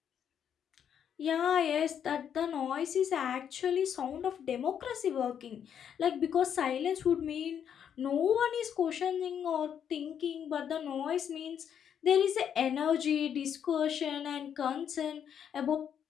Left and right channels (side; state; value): right; quieter; 8.6 dB